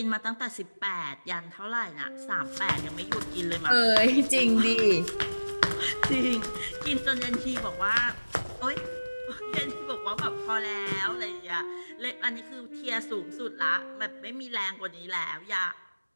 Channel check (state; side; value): inverted; both; correlation -1.00